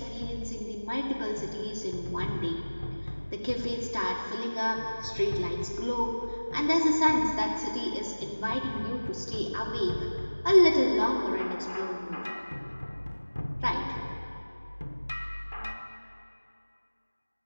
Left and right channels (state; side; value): inverted; both; correlation -1.00